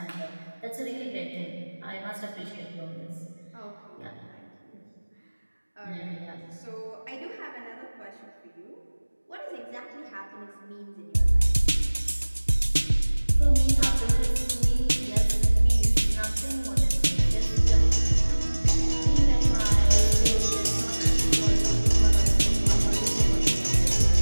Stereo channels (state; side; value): inverted; both; correlation -1.00